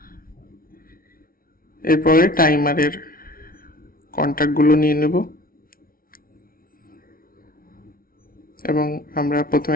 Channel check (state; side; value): late; right; 0.43 ms